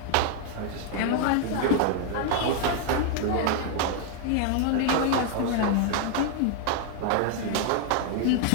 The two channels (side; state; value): both; different; correlation 0.00